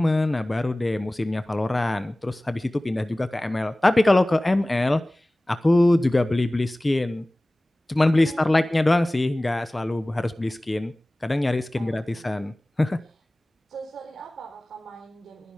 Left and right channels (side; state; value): both; normal; correlation 0.98